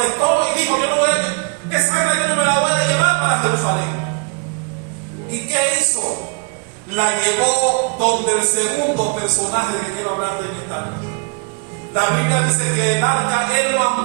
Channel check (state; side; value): quieter; left; 34.9 dB